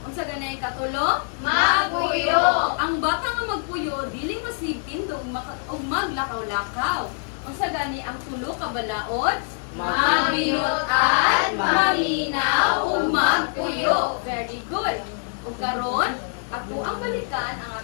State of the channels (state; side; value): silent; right; 59 dB below the other